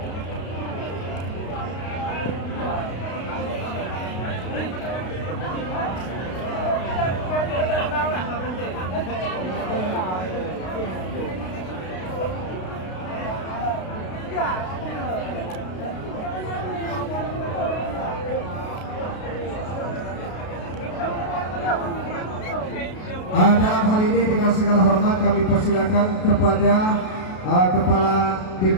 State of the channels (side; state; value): right; late; 32 ms